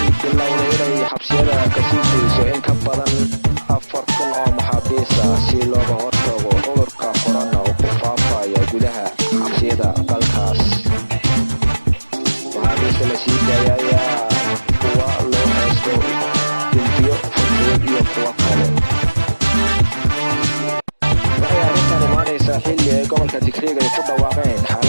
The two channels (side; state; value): both; inverted; correlation -1.00